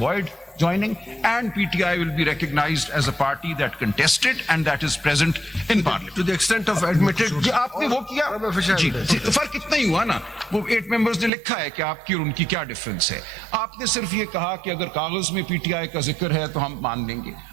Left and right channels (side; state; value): left; drops out; at 11.3 s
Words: void joining, and PTI will be recognized as a party that contested and that is present in Parliament. To the extent of admitted. जी आपने वो किया जी, फर्क इतना ही हुआ ना, वो 8 members ने लिखा है कि आपकी और उनकी क्या डिफरेंस है। आपने सिर्फ ये कहा कि अगर कागज में पीटीआई का जिक्र है तो हम मान लेंगे।